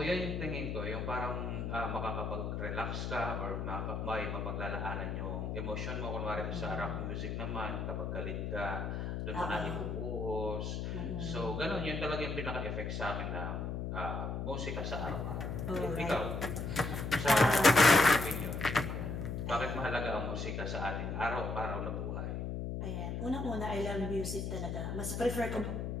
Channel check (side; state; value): left; noise; hum, 3 dB below the sound